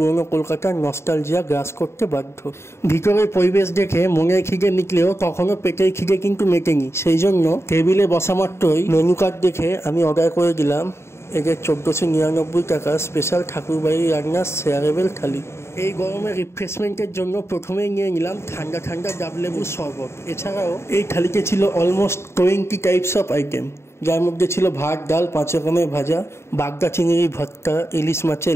কলকাতার নস্টালজিয়া গ্রাস করতে বাধ্য। ভিতরের পরিবেশ দেখে মনের খিদে মিটলেও তখনও পেটের খিদে কিন্তু মেটেনি। সেই জন্য টেবিলে বসা মাত্রই মেনু কার্ড দেখে আমি অর্ডার করে দিলাম এদের 1499 টাকা স্পেশাল ঠাকুরবাড়ির রান্নার শেয়ারেবল থালি। এই গরমে রিফ্রেশমেন্টের জন্য প্রথমেই নিয়ে নিলাম ঠান্ডা ঠান্ডা ডাবলেবুর শরবত। এছাড়াও এই থালিতে ছিল অলমোস্ট 20 টাইপস অফ আইটেম, যার মধ্যে ছিল ভাত, ডাল, 5 রকমের ভাজা, বাগদা চিংড়ি ভর্তা, ইলিশ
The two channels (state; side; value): late; right; 0.13 ms